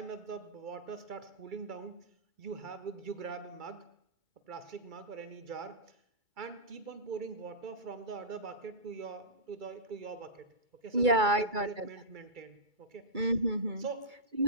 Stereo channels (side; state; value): left; late; 2.3 ms